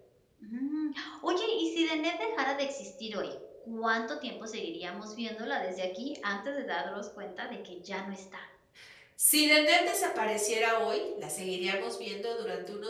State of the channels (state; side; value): identical; both; correlation 1.00